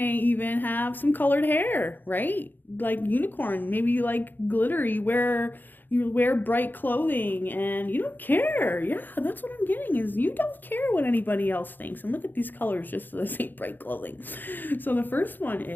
even have some colored hair, right? Like unicorn, maybe you like glitter, you wear bright clothing and you don't care. Yeah, that's what I'm getting, is you don't care what anybody else thinks. And look at these colors just so they say bright clothing. So the first one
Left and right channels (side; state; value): right; late; 0.090 ms